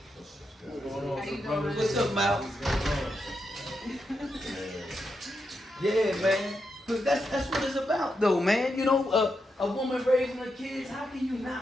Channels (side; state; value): both; normal; correlation 0.85